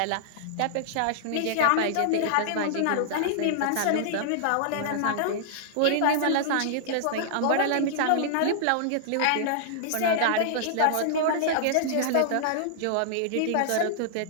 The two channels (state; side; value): different; both; correlation -0.02